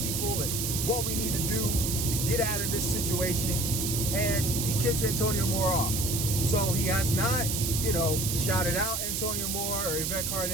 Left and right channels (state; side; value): noise; right; hiss, 1 dB below the sound